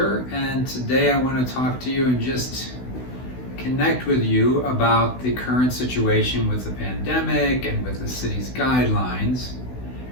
and today I want to talk to you and just connect with you about the current situation with the pandemic and with the city's guidelines.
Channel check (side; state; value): right; late; 16 ms